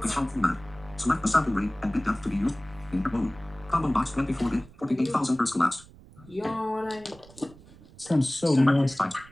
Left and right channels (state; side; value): noise; right; rumble, 22 dB below the sound